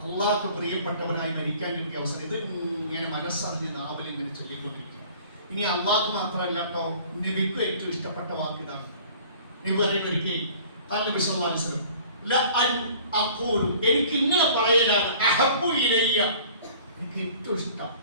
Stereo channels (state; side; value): inverted; both; correlation -0.49